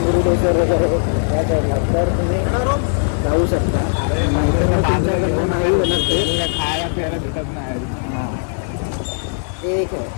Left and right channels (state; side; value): silent; right; digital silence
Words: वगैरे या साईडला, तर तुम्ही जाऊ शकता. नाहीतर मग तुमच्याकडनं नाही होणार ते. खायला प्यायला भेटत नाही. हां ठीक आहे.